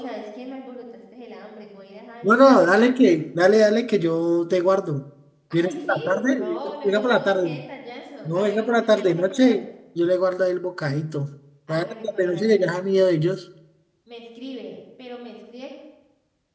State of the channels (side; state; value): both; identical; correlation 1.00